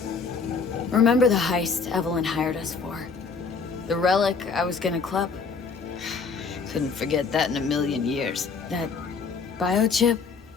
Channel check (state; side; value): quieter; right; 5.0 dB